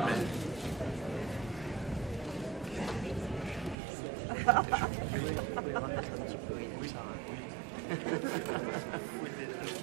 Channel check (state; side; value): drops out; left; at 3.8 s